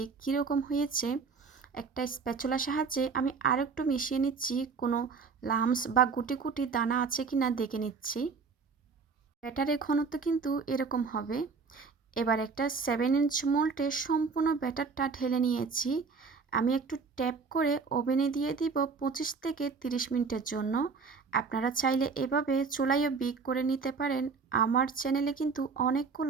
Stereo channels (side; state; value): left; quieter; 5.0 dB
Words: কীরকম হয়েছে। একটা স্প্যাচুলার সাহায্যে আমি আরেকটু মিশিয়ে নিচ্ছি, কোনো লাম্পস বা গুটি গুটি দানা আছে কিনা দেখে নিচ্ছি। ব্যাটারের ঘনত্ব কিন্তু এরকম হবে। এবার একটা 7 ইঞ্চ মোল্ডে সম্পূর্ণ ব্যাটারটা ঢেলে নিয়েছি। আমি একটু ট্যাপ করে ওভেনে দিয়ে দিব 25 থেকে 30 মিনিটের জন্য। আপনারা চাইলে এভাবে চুলায়ও বেক করে নিতে পারেন। আমার চ্যানেলে কিন্তু